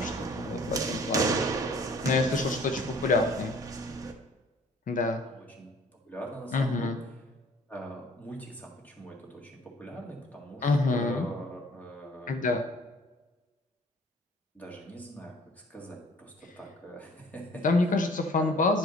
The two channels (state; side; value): normal; both; correlation 0.54